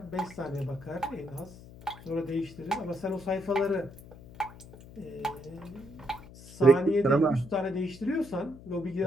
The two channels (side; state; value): left; noise; hum, 18 dB below the sound